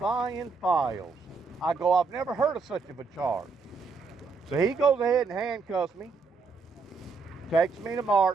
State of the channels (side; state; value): left; quieter; 4.6 dB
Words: files? I go, I've never heard of such of a charge. So he goes ahead and handcuffs me, takes me to